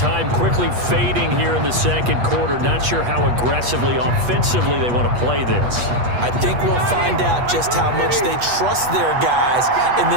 quickly fading here in the second quarter, not sure how aggressively, offensively they want to play this. I think we'll find out just how much they trust their guys in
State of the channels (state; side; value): late; left; 8.3 ms